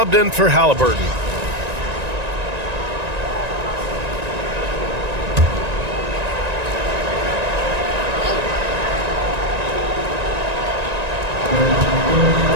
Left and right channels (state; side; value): late; left; 1.9 ms